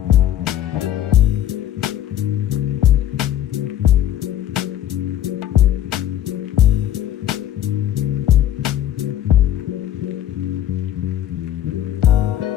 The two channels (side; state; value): right; quieter; 11.6 dB